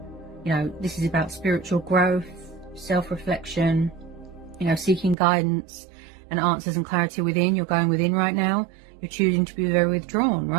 You know, this is about spiritual growth, self-reflection, you know, seeking guidance and answers and clarity within. You're going within right now. You're choosing to be very withdrawn,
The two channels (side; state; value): left; drops out; at 5.2 s